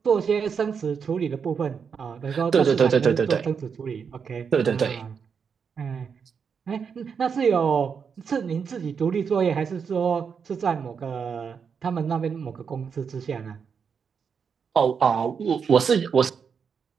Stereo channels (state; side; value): quieter; left; 6.4 dB